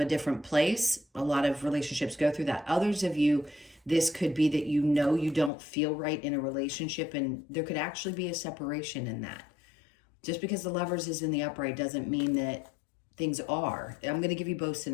different place. A lot of relationships go through that. Others of you, this could be that you know you don't feel right in a relationship, and there could actually be a separation in that. Just because the Lovers is in the upright doesn't mean that things are. I'm going to give you both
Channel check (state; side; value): drops out; right; at 5.5 s